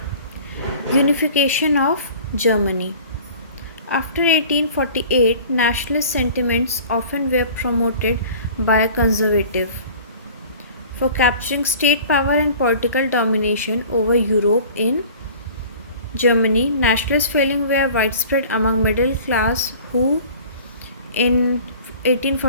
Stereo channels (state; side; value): inverted; both; correlation -0.45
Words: Unification of Germany. After 1848, nationalist sentiments often were promoted by a conservative for capturing state power and political domination over Europe. In Germany, nationalist feelings were widespread among middle class who in